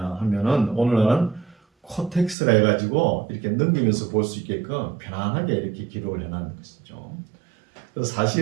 하면은 오늘날은 코텍스라 해가지고 이렇게 넘기면서 볼 수 있게끔 편안하게 이렇게 기록을 해놓은 것이죠. 그래서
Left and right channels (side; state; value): left; drops out; at 2.4 s